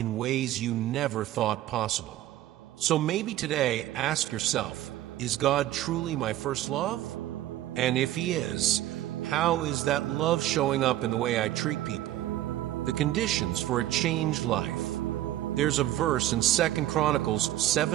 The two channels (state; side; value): quieter; left; 14.0 dB